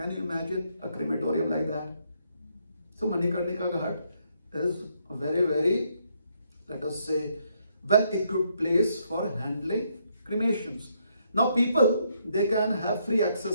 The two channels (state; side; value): inverted; both; correlation -0.74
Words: you imagine a crematorium like that? So Manikarnika Ghat is a very, very, let us say, well-equipped place for handling cremations. Now people, they can have free